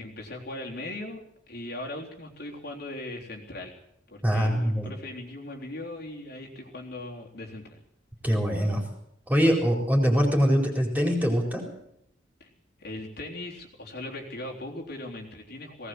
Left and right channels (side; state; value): both; normal; correlation 0.87